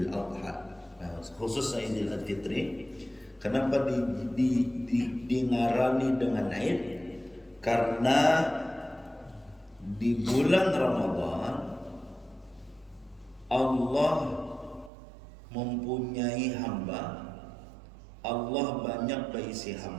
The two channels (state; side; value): drops out; left; at 14.9 s